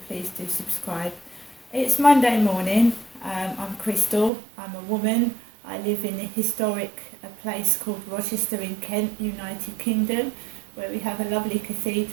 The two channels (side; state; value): left; drops out; at 4.3 s